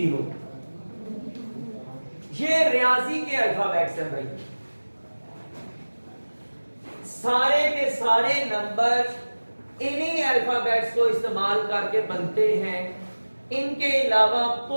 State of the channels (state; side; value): inverted; both; correlation -1.00